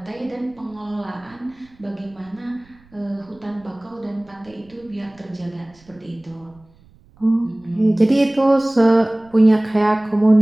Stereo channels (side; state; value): right; noise; rumble, 29 dB below the sound